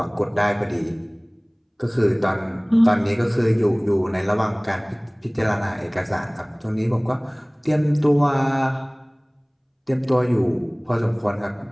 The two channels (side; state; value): both; identical; correlation 1.00